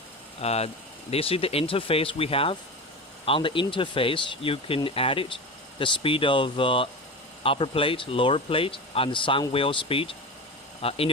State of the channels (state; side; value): normal; both; correlation 0.26